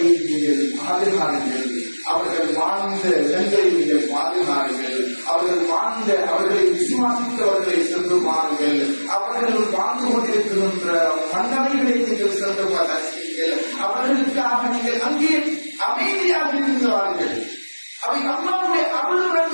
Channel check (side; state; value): both; inverted; correlation -1.00